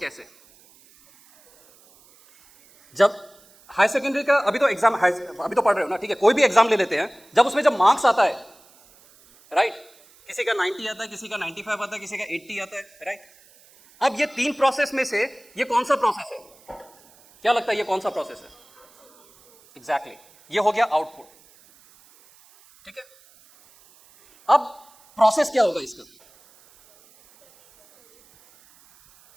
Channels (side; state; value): right; noise; hiss, 28 dB below the sound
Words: जब हाई सेकेंडरी का अभी तो एग्जाम, अभी तो पढ़ रहे हो ना, ठीक है, कोई भी एग्जाम ले लेते हैं, जब उसमें जब मार्क्स आता है, राइट, किसी का 90 आता है, किसी का 95 आता है, किसी का 80 आता है, राइट। अब ये 3 प्रोसेस में से ये कौन सा प्रोसेस है? क्या लगता है ये कौन सा प्रोसेस है? एग्जैक्टली, ये हो गया आउटपुट, ठीक है। अब प्रोसेस क्या होगा इसका?